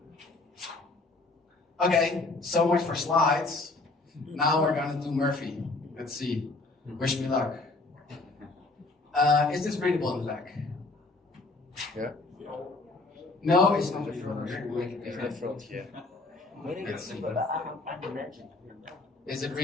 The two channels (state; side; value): quieter; right; 3.3 dB